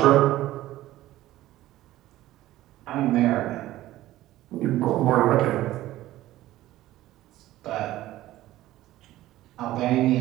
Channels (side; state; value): left; quieter; 15.4 dB